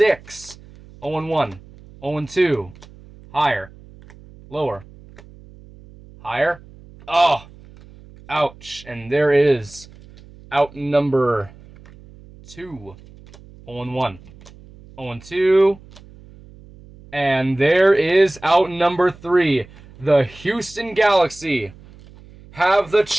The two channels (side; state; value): right; noise; hum, 22 dB below the sound